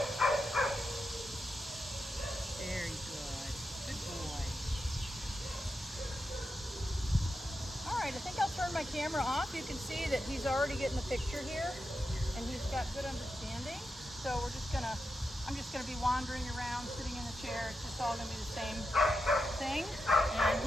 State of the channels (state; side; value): normal; both; correlation 0.87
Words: Very good. Good boy. All right, I think I'll turn my camera off. You can see that he's already getting the picture here, and he's got good understanding. So I'm just gonna be wandering around, sitting in the chair. It's just all gonna be the same thing. And